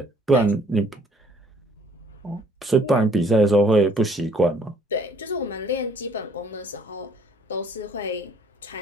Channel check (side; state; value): both; normal; correlation 0.60